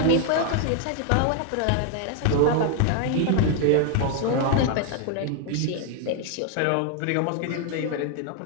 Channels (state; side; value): different; both; correlation 0.00